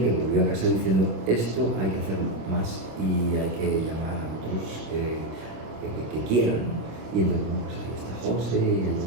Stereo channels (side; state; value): left; late; 26 ms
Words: que volvió a casa diciendo, esto hay que hacerlo más y hay que llamar a otros que quieran. Y entonces, pues ahí está José y hay